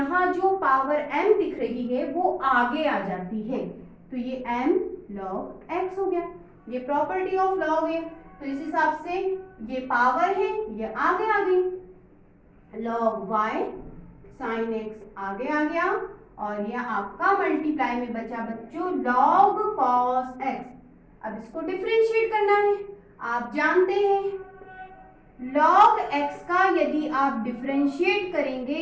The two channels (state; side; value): identical; both; correlation 1.00